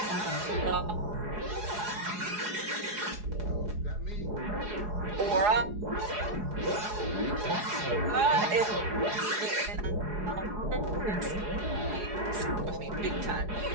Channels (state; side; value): late; left; 4.8 ms